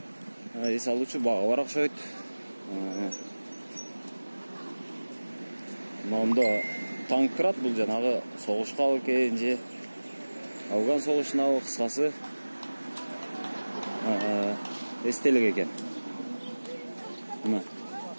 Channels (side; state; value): both; inverted; correlation -1.00